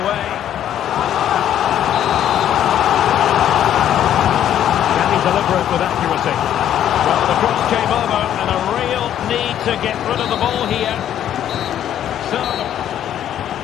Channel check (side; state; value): right; quieter; 10.7 dB